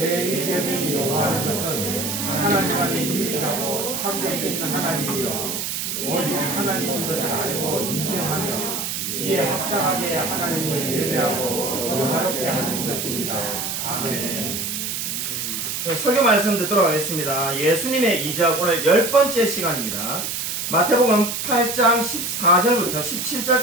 요구하는 것은 하나님만이 유일하고 참되신 하나님이요 오직 하나님인 것을 알고 인정하며 이에 합당하게 하나님을 예배하고 영화롭게 하는 것입니다. 아멘. 설교 말씀 듣도록 하겠습니다. 예수님의 이적 오늘 10번째 시간입니다. 마태복음 8장 14절부터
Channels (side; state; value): right; noise; hiss, 3 dB below the sound